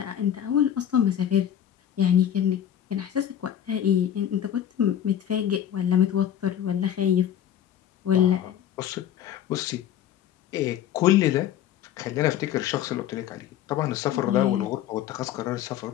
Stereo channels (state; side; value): quieter; right; 10.3 dB